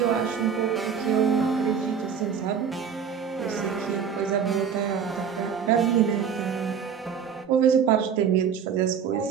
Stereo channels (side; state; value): left; quieter; 7.3 dB